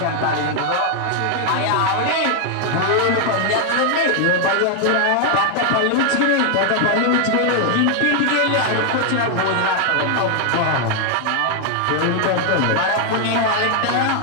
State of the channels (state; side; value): different; both; correlation 0.00